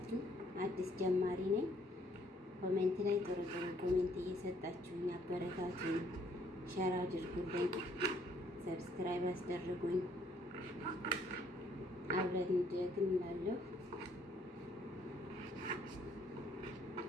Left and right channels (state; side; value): normal; both; correlation 0.65